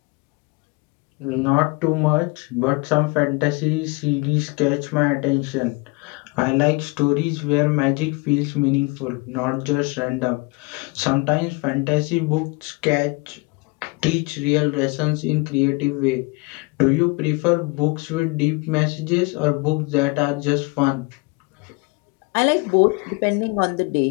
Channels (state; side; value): quieter; right; 27.5 dB